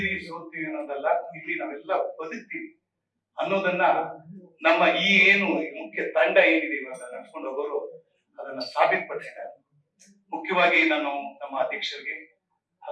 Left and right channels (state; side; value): identical; both; correlation 1.00